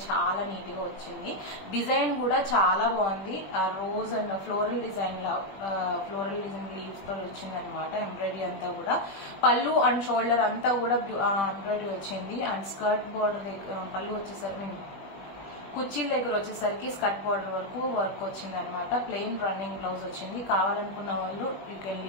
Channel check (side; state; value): right; late; 20 ms